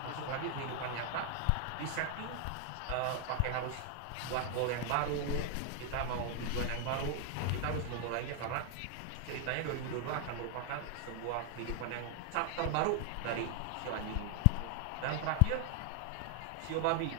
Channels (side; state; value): both; different; correlation 0.00